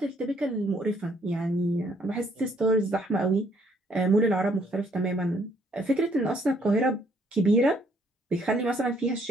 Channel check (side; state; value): both; normal; correlation 0.66